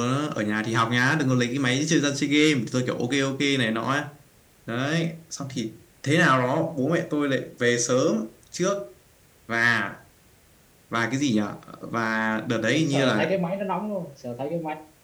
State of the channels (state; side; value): identical; both; correlation 1.00